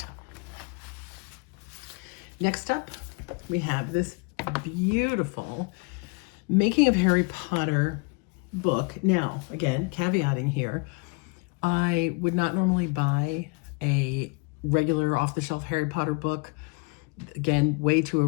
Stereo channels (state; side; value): quieter; right; 31.2 dB